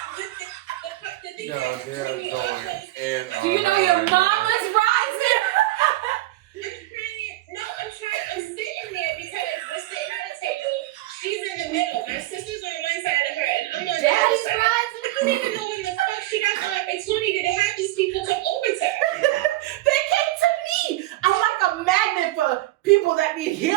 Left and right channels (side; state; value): left; quieter; 17.5 dB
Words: Yo, they're going in. Do you know your mama's rising? No, I'm sitting there because we're sitting at a table. She's in the middle. My sister's on one side of her, and I'm on the other Daddy's side. rising. I don't even know when the fuck she got the opportunity to have these people come over to her. They came to me. I'm like a magnet for people that need